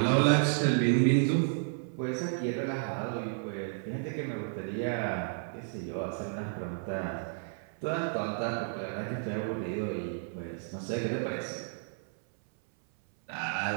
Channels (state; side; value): silent; left; 56 dB below the other